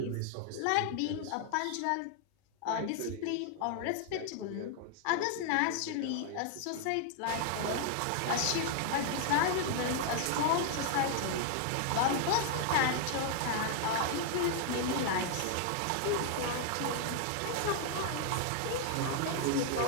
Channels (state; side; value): different; both; correlation 0.00